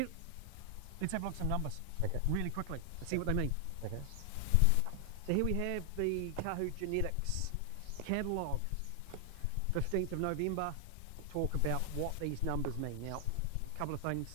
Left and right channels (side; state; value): both; different; correlation 0.00